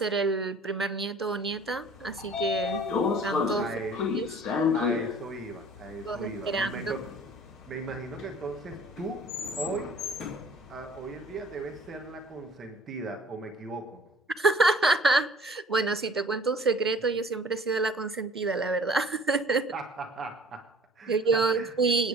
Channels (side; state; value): both; normal; correlation 0.50